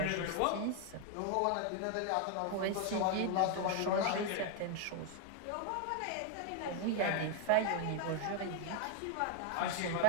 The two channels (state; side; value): different; both; correlation 0.01